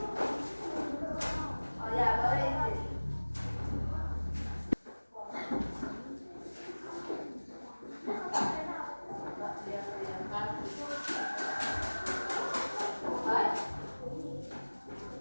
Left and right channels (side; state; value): both; inverted; correlation -1.00